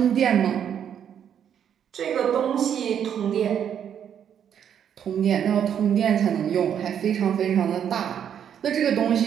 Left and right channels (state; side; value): quieter; left; 8.8 dB